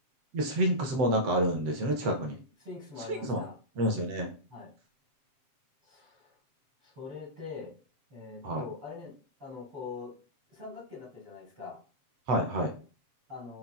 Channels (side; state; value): left; late; 7.5 ms